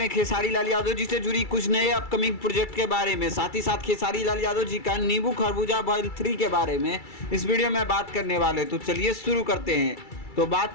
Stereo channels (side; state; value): right; late; 2.3 ms